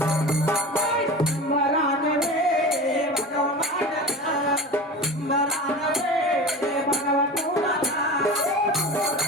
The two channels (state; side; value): normal; both; correlation 0.31